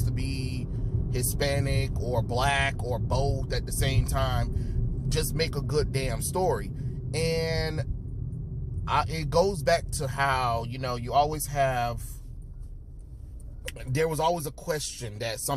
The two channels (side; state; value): both; identical; correlation 1.00